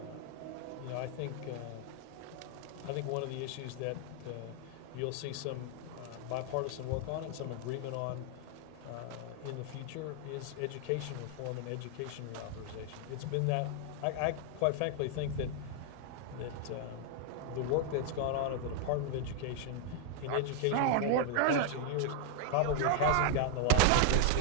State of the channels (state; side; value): different; both; correlation 0.00